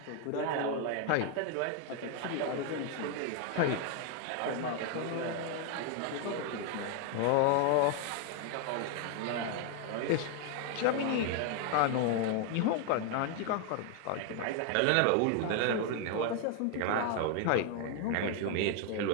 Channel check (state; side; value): different; both; correlation 0.00